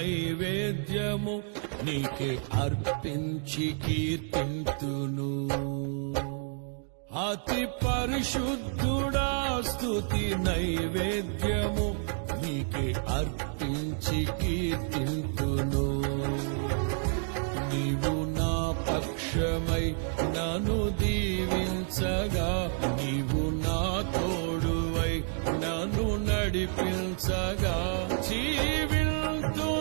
నీకే అర్పించి కీర్తింతును. అతి పరిశుద్ధుడా స్తుతి నైవేద్యము నీకే అర్పించి కీర్తింతును. నీవు నా పక్షమై నన్ను దీవించగా, నీవు నా తోడువై నన్ను నడిపించగా,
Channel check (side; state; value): left; silent; 55 dB below the other